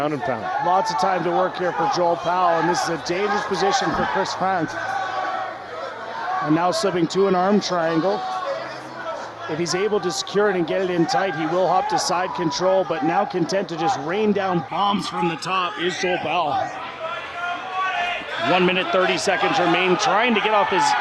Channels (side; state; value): both; identical; correlation 1.00